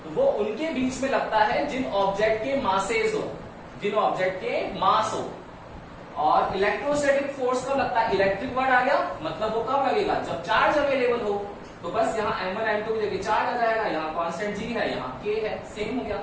वो उनके बीच में लगता है जिन ऑब्जेक्ट के मासेस हो, जिन ऑब्जेक्ट के मास हो। और इलेक्ट्रोस्टैटिक फोर्स कब लगता है? इलेक्ट्रिक वर्ड आ गया, मतलब वो कब लगेगा? जब चार्ज अवेलेबल हो। तो बस यहाँ m1 m2 की जगह चार्ज आ जाएगा, यहाँ कांस्टेंट g है, यहाँ k है, सेम हो गया।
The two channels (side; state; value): both; identical; correlation 1.00